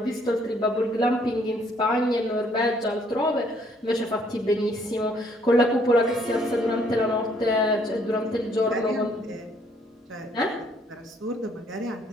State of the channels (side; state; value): both; normal; correlation 0.65